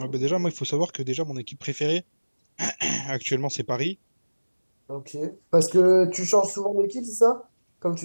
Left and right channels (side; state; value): both; inverted; correlation -1.00